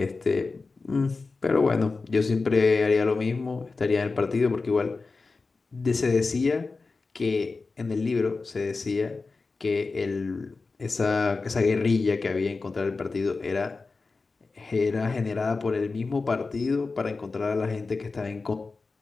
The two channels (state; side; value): quieter; right; 4.0 dB